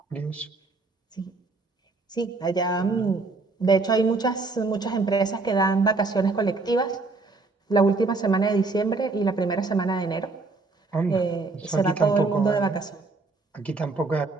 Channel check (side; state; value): left; quieter; 3.7 dB